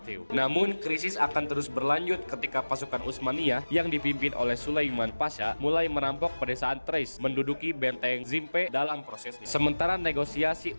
Namun krisis akan terus berlanjut ketika pasukan Utsmaniyah yang dipimpin oleh Sulaiman Pasha mulai merampok pedesaan Thrace, menduduki benteng Zimpe dalam prosesnya. Sementara negosiasi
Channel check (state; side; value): inverted; both; correlation -1.00